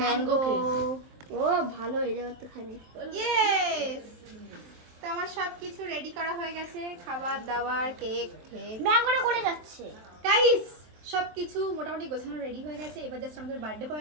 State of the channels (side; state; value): left; late; 23 ms